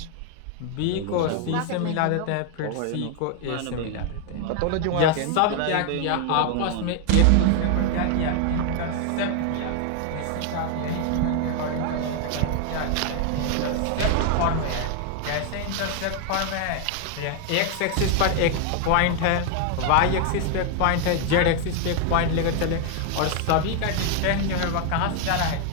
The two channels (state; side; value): different; both; correlation 0.00